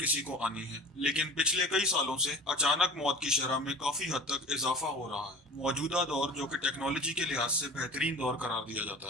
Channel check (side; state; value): both; normal; correlation 0.39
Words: को आनी है, लेकिन पिछले कई सालों से अचानक मौत की शरह में काफी हद तक इजाफा हो रहा है। मौजूदा दौर, जो कि टेक्नोलॉजी के लिहाज से बेहतरीन दौर करार दिया